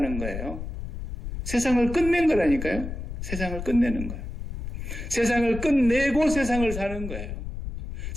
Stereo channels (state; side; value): noise; left; rumble, 7 dB below the sound